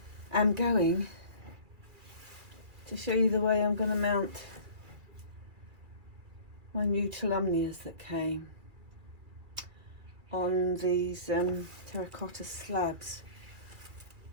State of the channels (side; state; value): left; late; 2.4 ms